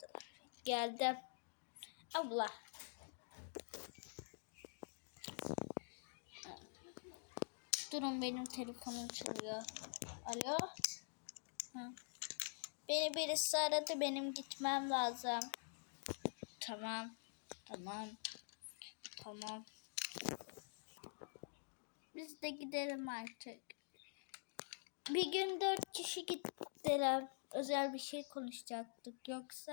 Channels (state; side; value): silent; right; digital silence